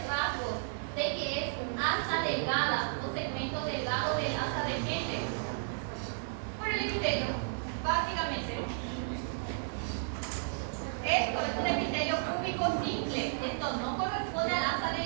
rasgos de que es asa delgada o segmento delgado del asa de Henle, por el epitelio, básicamente. Esto es un epitelio cúbico simple, esto no corresponde a la asa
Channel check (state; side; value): silent; left; 56 dB below the other